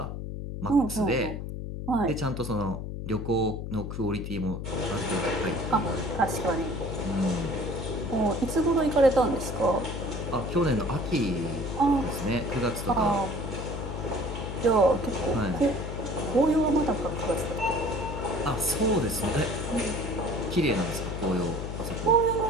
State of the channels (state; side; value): noise; left; hum, 6 dB below the sound